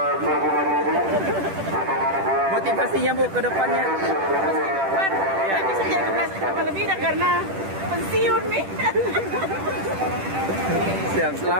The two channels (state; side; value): late; left; 10 ms